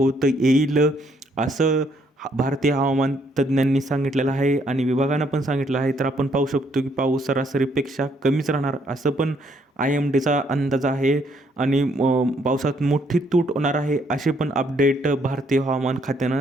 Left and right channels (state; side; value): normal; both; correlation 0.70